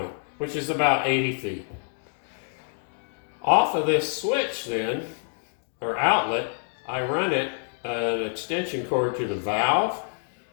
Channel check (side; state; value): right; silent; 60 dB below the other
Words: which is about 80 feet. Off of this switch then, or outlet, I run an extension cord to the valve,